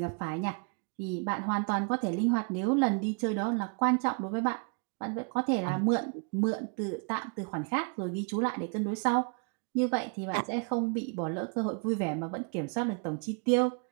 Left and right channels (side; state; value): left; quieter; 38.2 dB